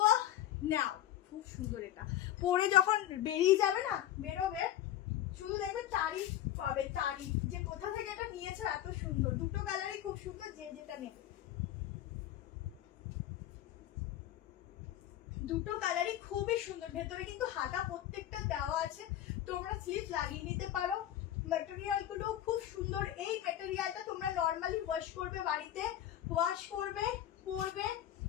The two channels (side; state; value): right; quieter; 12.4 dB